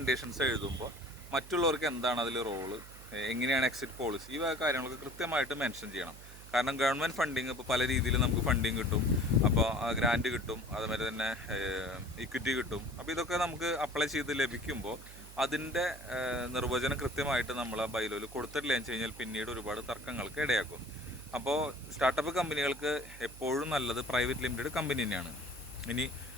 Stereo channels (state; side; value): noise; right; hum, 17 dB below the sound